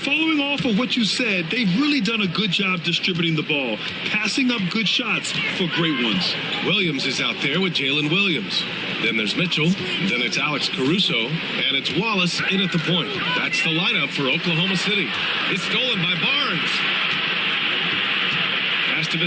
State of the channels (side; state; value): both; identical; correlation 1.00